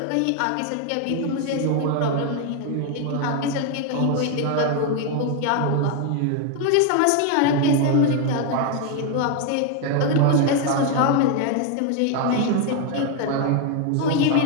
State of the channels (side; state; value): both; different; correlation 0.01